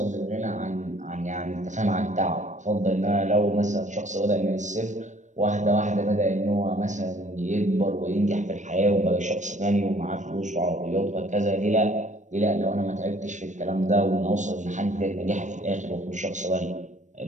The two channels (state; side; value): late; left; 0.35 ms